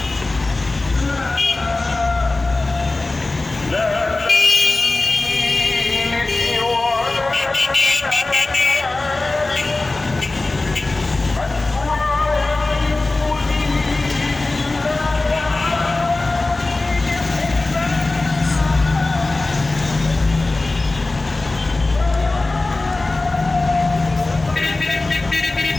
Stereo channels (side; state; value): right; quieter; 3.1 dB